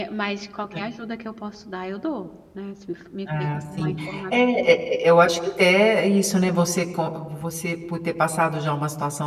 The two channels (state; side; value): identical; both; correlation 1.00